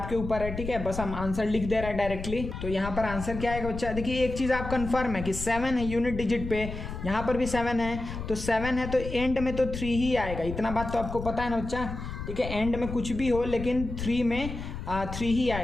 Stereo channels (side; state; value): left; noise; rumble, 7 dB below the sound